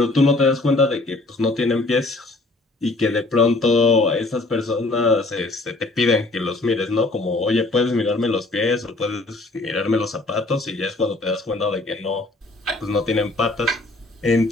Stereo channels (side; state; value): right; quieter; 3.0 dB